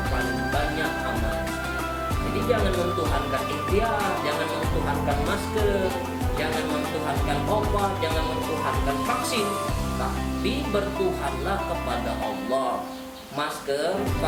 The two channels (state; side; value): identical; both; correlation 1.00